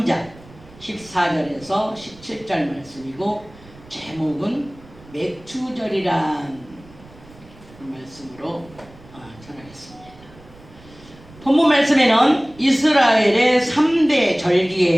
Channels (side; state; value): right; noise; rumble, 23 dB below the sound